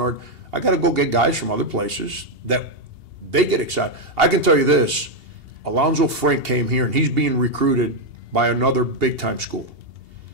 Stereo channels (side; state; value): left; late; 2.8 ms